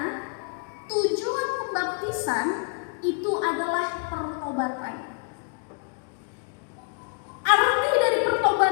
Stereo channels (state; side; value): quieter; right; 39.8 dB